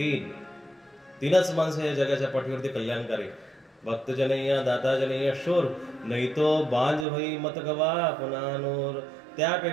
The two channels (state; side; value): drops out; left; at 7.1 s